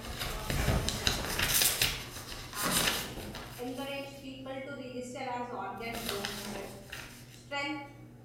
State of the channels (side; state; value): both; identical; correlation 1.00